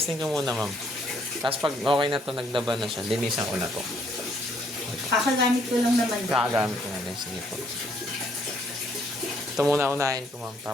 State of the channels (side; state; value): both; normal; correlation 0.68